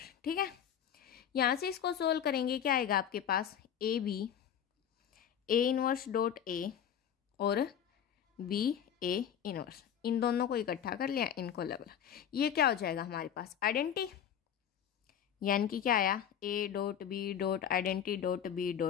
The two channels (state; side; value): quieter; right; 9.0 dB